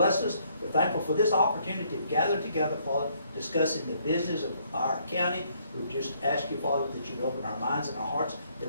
us. We're thankful for this opportunity to gather together, Father, discussing the business of our county. We just ask you, Father, that you'd open our minds and our hearts,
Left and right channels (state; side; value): inverted; both; correlation -0.68